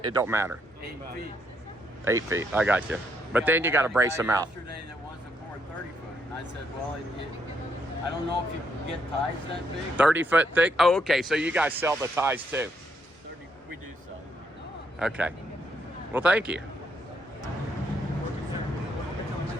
it don't matter. 8 feet. 8 feet, I got you. But then you got to brace them out. Yesterday that wants to pour 30 foot, and I said, well, I don't know if you can get ties that big. 30 foot thick? Oh, okay, so you guys sell the ties too. 30, we do sell. Okay. Well, thank you.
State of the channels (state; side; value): normal; both; correlation 0.75